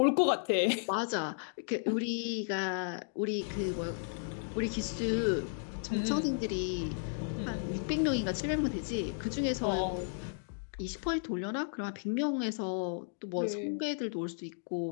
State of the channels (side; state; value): right; silent; digital silence